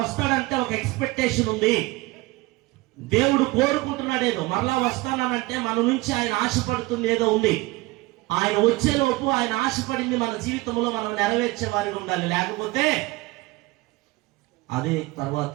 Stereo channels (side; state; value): left; quieter; 21.7 dB